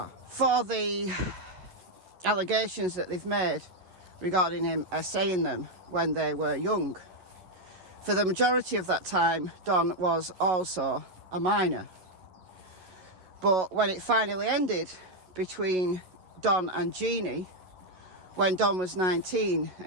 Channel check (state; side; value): late; left; 11 ms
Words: for the allegations that they've made regarding him essaying them when they were young. For the majority of that time, Don was also a minor. But when it finally ended between Don and Jeannie, when Don was 19